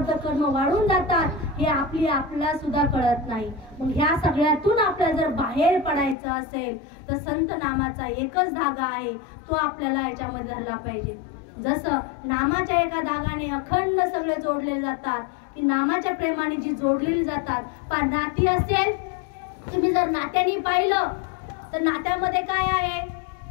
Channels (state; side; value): drops out; right; at 6.2 s